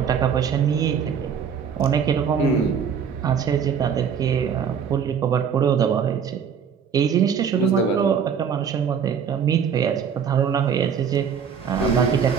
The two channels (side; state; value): left; quieter; 7.1 dB